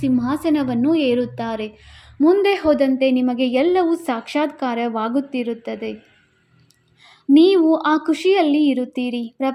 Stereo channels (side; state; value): both; identical; correlation 1.00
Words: ಏರುತ್ತಾರೆ. ಮುಂದೆ ಹೋದಂತೆ ನಿಮಗೆ ಎಲ್ಲವೂ ಸಾಕ್ಷಾತ್ಕಾರವಾಗುತ್ತಿರುತ್ತದೆ. ನೀವು ಆ ಖುಷಿಯಲ್ಲಿ ಇರುತ್ತೀರಿ.